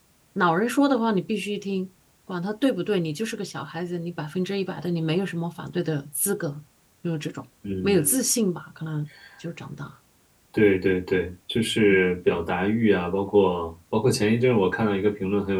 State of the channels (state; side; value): identical; both; correlation 1.00